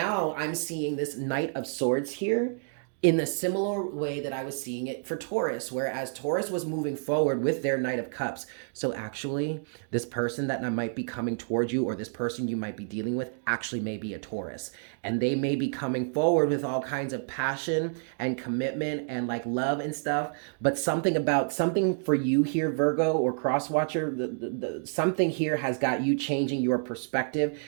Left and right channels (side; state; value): left; silent; digital silence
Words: I'm seeing this Knight of Swords here in the similar way that I was seeing it for Taurus, whereas Taurus was moving forward with their Knight of Cups. So actually, this person that might be coming towards you, or this person you might be dealing with, actually may be a Taurus. And they may be coming forward with all kinds of passion and commitment and like love and stuff. But something for you here, Virgo or Crosswatcher, something here has got you changing your perspective